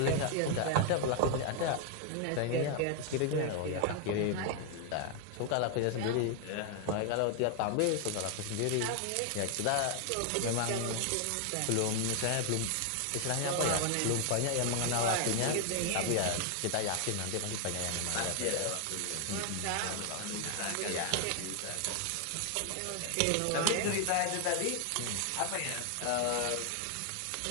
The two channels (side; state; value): both; different; correlation 0.00